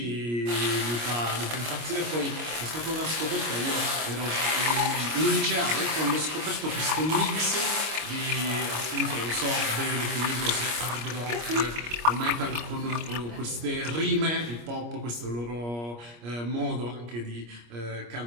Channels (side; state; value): left; late; 25 ms